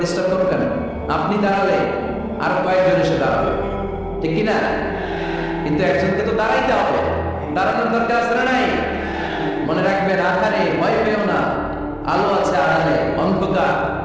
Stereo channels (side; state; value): both; identical; correlation 1.00